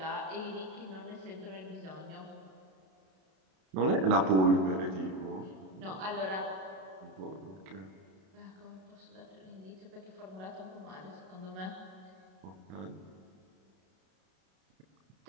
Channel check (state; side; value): late; left; 32 ms